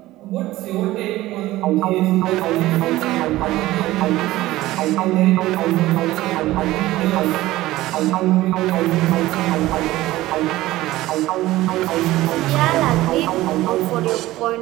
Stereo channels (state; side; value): quieter; left; 16.8 dB